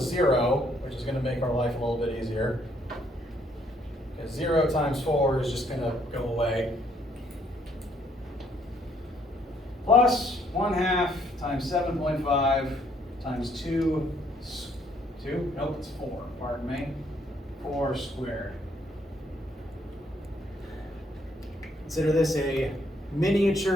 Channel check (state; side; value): normal; both; correlation 0.68